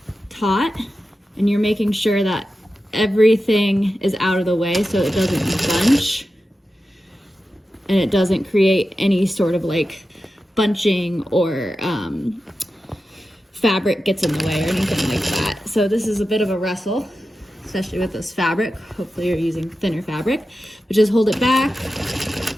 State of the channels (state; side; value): normal; both; correlation 0.92